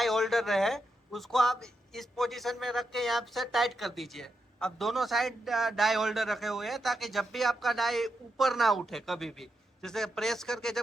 होल्डर रहे, उसको आप इस पोजीशन में रख के यहाँ से टाइट कर दीजिए। अब दोनों साइड डाई होल्डर रखे हुए हैं ताकि जब भी आपका डाई ऊपर ना उठे, कभी भी जैसे प्रेस करके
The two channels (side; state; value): both; normal; correlation 0.84